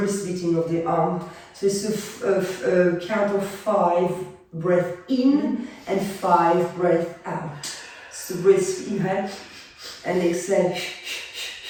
beating of the arm. So it's a count of 5 breath in and 5 breath out. So brisk inhale and exhale.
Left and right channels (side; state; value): both; identical; correlation 1.00